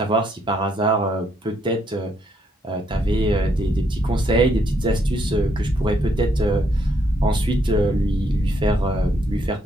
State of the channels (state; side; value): normal; both; correlation 0.74